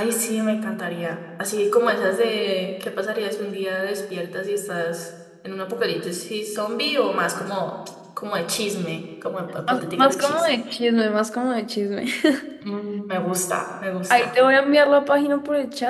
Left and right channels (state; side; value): identical; both; correlation 1.00